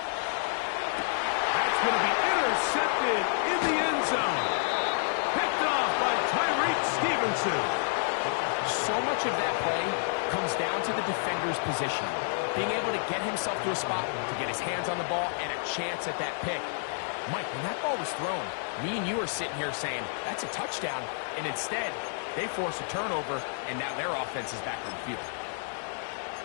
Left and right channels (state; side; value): silent; right; digital silence